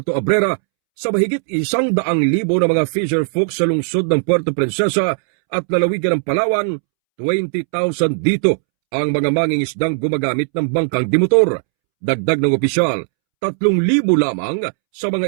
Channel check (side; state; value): left; silent; 68 dB below the other